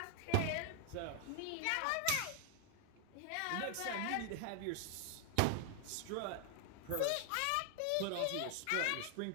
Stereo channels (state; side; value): different; both; correlation 0.00